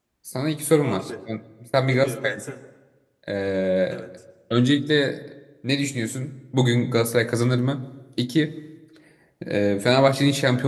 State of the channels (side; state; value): both; identical; correlation 1.00